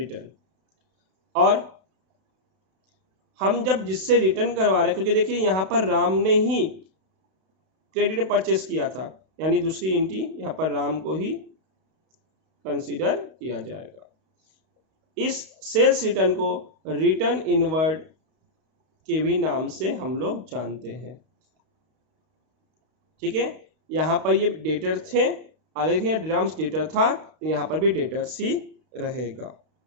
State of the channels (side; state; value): left; late; 32 ms